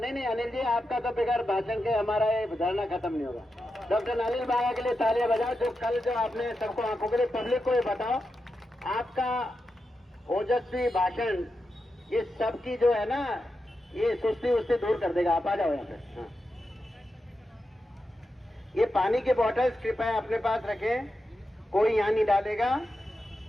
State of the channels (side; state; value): both; normal; correlation 0.89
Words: अनिल जी, आपका तो बगैर भाषण के हमारा ये धरना खत्म नहीं होगा। डॉक्टर अनिल बांगा के लिए तालियां बजाओ, जो कल जो आपने सबको आंखों के लिए पब्लिक को ये बताओ, आपका ओजस्वी भाषण ये सबकी जो है ना, ये सुस्ती उससे दूर कर देगा। आप आ जाओ यहाँ पे। हाँ। ये पानी के बॉटल्स कृपया अपने पास रखें, कोई यहाँ नहीं डालेगा।